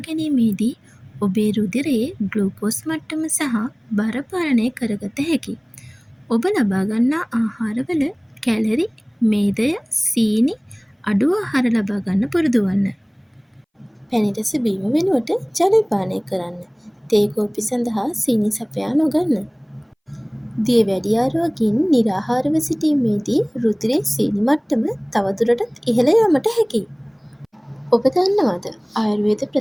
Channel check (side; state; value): both; identical; correlation 1.00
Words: ගැනීමේදී ඔබේ රුධිරයේ ග්ලූකෝස් මට්ටම සහ බර පාලනය කරගත හැකියි. ඔබ ලබා ගන්නා ආහාරවල කැලරි, මේදය, සීනි අඩු ආහාර ලබා ගන්න පුරුදු වන්න. පැණි රස බීම වෙනුවට ජලය පානය කරන්න. තේ කෝපි සඳහා සීනි සපයා නොගන්න. දියවැඩියා රෝගීන් නිරාහාරව සිටීමේදී රුධිරයේ සීනි මට්ටම තවදුරටත් ඉහළ යාමට හැකියි. ඔබ දන්නවද ආයුර්වේද